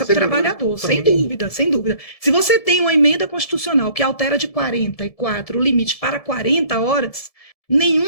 para o trabalhador, sem dúvida, sem dúvida. Se você tem uma emenda constitucional que altera de 44 o limite para 40 horas,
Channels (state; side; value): late; right; 1.7 ms